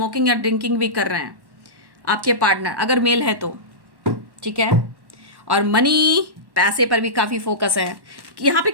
या ड्रिंकिंग भी कर रहे हैं आपके पार्टनर, अगर मेल है तो, ठीक है। और मनी, पैसे पर भी काफ़ी फोकस है कि यहाँ पे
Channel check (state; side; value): late; left; 1.1 ms